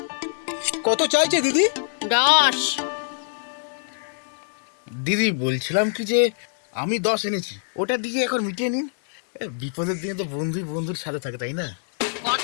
কত চাইছে দিদি? 10। দিদি, বলছিলাম কি যে আমি 10 এনেছি, ওটা দিয়ে এখন মিটিয়ে নিন। বিপদের দিনে তো বন্ধুই বন্ধুর সাথে থাকে, তাই না?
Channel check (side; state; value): right; silent; digital silence